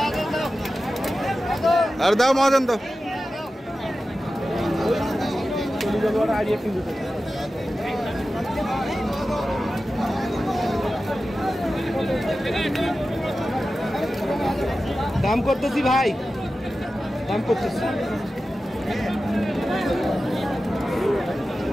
আর দাও মহাজন দাও। দাম করতেছি ভাই, দাম করতেছি।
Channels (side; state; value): both; normal; correlation 0.94